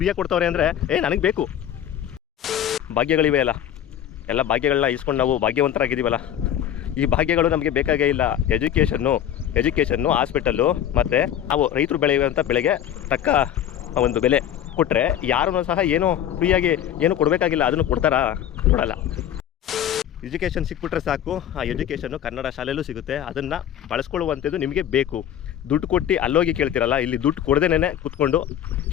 ಕೊಡ್ತವ್ರೆ ಅಂದರೆ ನನಗೆ ಬೇಕು. ಭಾಗ್ಯಗಳಿವೆ ಅಲ್ಲ, ಎಲ್ಲ ಭಾಗ್ಯಗಳನ್ನ ಇಸ್ಕೊಂಡು ನಾವು ಭಾಗ್ಯವಂತರಾಗಿದ್ದೀವಲ್ಲ. ಈ ಭಾಗ್ಯಗಳು ನಮಗೆ ಬೇಕಾಗೇ ಇಲ್ಲ. ಎಜುಕೇಷನ್ನು ಹಾಸ್ಪಿಟಲ್ಲು ಮತ್ತು ನಾವು ರೈತರು ಬೆಳೆಯುವಂಥ ಬೆಳೆಗೆ ತಕ್ಕ ಒಂದು ಬೆಲೆ ಕೊಟ್ಟರೆ ಯಾರೂ ಸಹ ಏನೂ ಫ್ರೀಯಾಗಿ ಏನು ಕೊಡಬೇಕಾಗಿಲ್ಲ. ಅದನ್ನು ಕೊಡ್ತಾರಾ? ಕೊಡಲ್ಲ. ಎಜುಕೇಷನ್ ಸಿಕ್ಬಿಟ್ರೆ ಸಾಕು. ಆ ಎಜುಕೇಷನ್ನು ಕನ್ನಡ ಶಾಲೆಯಲ್ಲೂ ಸಿಗುತ್ತೆ. ಅದನ್ನು ಬಳಸ್ಕೊಳ್ಳುವಂಥದ್ದು ನಿಮಗೆ ಬೇಕು. ದುಡ್ಡು ಕೊಟ್ಟು ಅಲ್ಲೋಗಿ ಕೇಳ್ತಿರಲ್ಲ, ಇಲ್ಲಿ ದುಡ್ಡು ಕೊಡದೇನೆ ಕೂತ್ಕೊಂಡು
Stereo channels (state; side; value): quieter; right; 10.5 dB